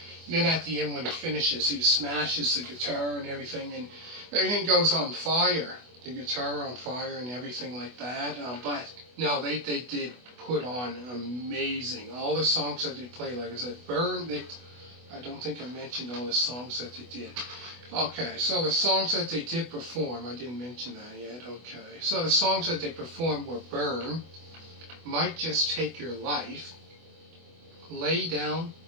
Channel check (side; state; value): left; late; 24 ms